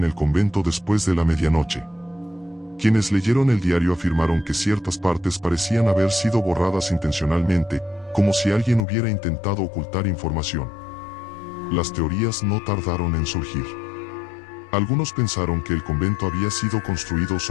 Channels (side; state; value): right; drops out; at 8.8 s